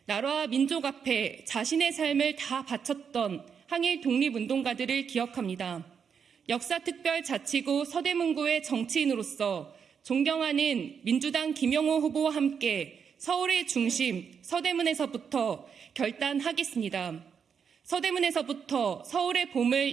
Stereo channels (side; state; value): left; quieter; 6.8 dB